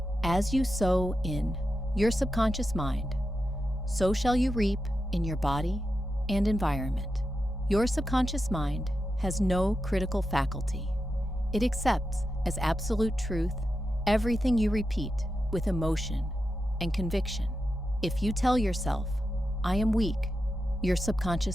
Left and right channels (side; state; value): both; normal; correlation 0.89